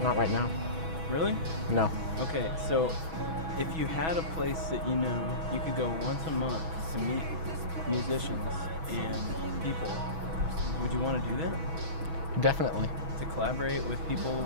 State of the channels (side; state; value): left; late; 6.2 ms